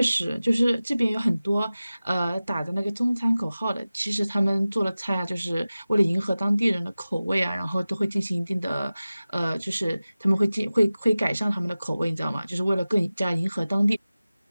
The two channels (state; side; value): inverted; both; correlation -0.97